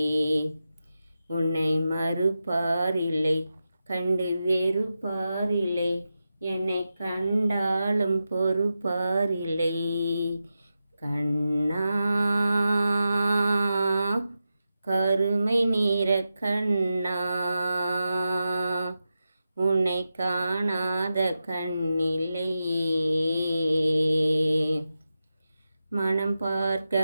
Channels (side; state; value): both; inverted; correlation -0.90